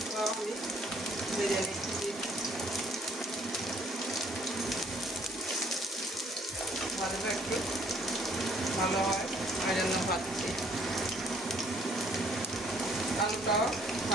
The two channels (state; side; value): normal; both; correlation 0.62